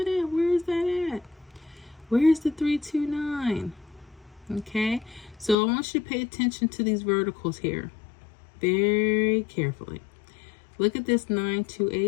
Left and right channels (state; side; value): drops out; right; at 5.6 s